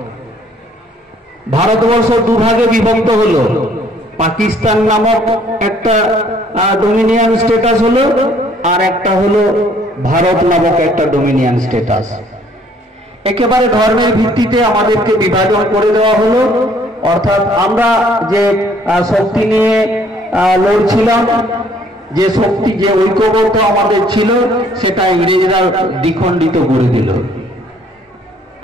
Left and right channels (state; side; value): normal; both; correlation 0.61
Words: ভারতবর্ষ দুভাগে বিভক্ত হলো, পাকিস্তান নামক একটা ডোমিনিয়ন স্টেটাস হলো, আর একটা হলো ভারত নামক একটা ডোমিনিয়ন স্টেটাস। একেবারে ধর্মের ভিত্তিতে আমাদেরকে বিভাজন করে দেওয়া হলো। অর্থাৎ আমরা যে শক্তি নিয়ে লড়ছিলাম, যে শক্তি, যে ঐক্যবদ্ধ আমাদের ছিল, সেটা ইংরেজরা দ্বিখণ্ডিত করে দিল।